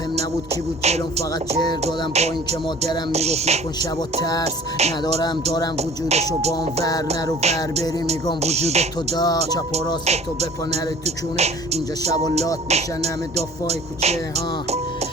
نبود کی بود جلوم، فقط جر دادم با این که مادرم میگفت نکن شبا ترس ندارم. دارم وجودشو بام ور نرو ور بری میگم وجود تو دا. چپ و راست تو بپا نره تو کونه، اینجا شبا لات میشن همه دافای کوچه ها.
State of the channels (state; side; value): normal; both; correlation 0.47